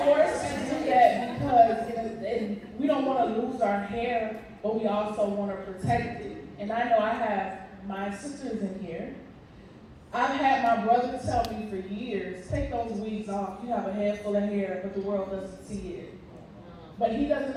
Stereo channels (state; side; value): identical; both; correlation 1.00